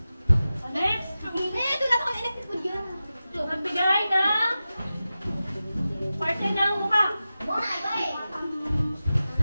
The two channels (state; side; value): inverted; both; correlation -0.94